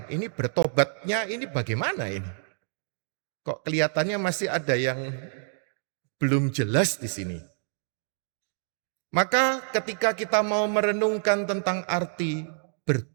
ini bertobatnya ini bagaimana ini? Kok kelihatannya masih ada yang belum jelas di sini. Maka ketika kita mau merenungkan tentang arti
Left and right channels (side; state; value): left; silent; digital silence